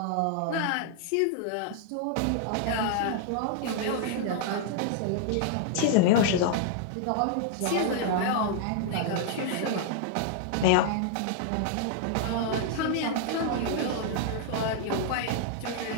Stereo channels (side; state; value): both; different; correlation 0.00